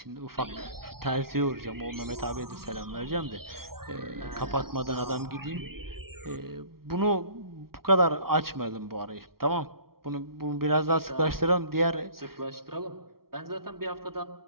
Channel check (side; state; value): left; late; 0.94 ms